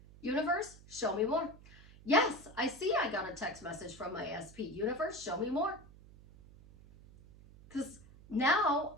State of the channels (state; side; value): noise; right; hum, 21 dB below the sound